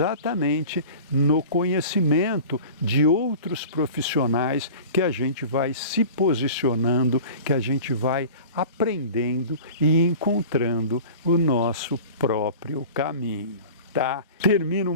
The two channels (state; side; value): inverted; both; correlation -0.39